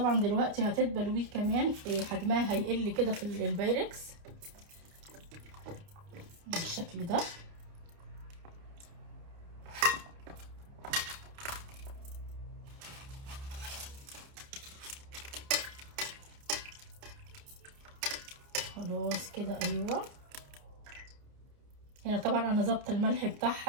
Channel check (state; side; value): late; left; 29 ms